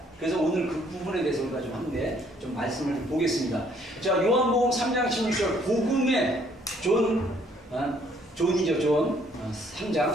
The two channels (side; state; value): both; normal; correlation 0.64